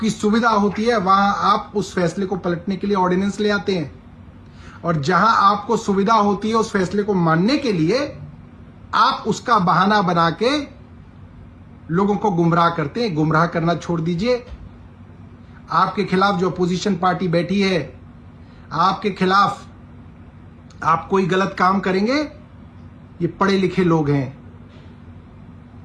सुविधा होती है, वहां आप उस फैसले को पलटने के लिए ऑर्डिनेंस ले आते हैं। और जहां आपको सुविधा होती है उस फैसले को मानने के लिए, आप उसका बहाना बना के लोगों को गुमराह करते हैं। गुमराह करना छोड़ दीजिए। आपके खिलाफ जो अपोजिशन पार्टी बैठी है, आपके खिलाफ आप कोई गलत काम करेंगे, ये पढ़े लिखे लोग हैं,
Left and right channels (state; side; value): identical; both; correlation 1.00